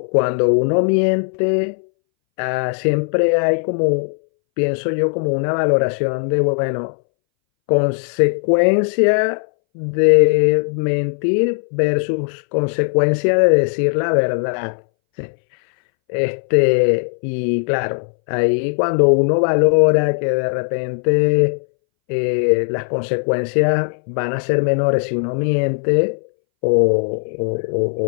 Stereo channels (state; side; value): silent; right; 64 dB below the other